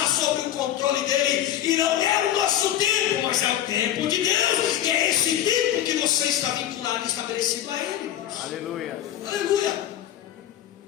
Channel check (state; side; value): quieter; right; 11.8 dB